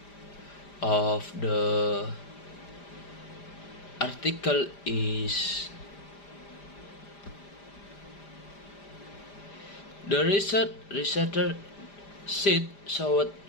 of the article is the researcher sheet showed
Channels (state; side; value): late; right; 5.0 ms